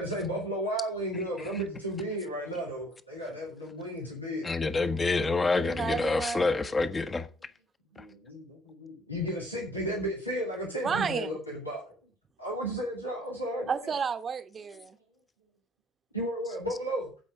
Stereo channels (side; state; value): both; normal; correlation 0.61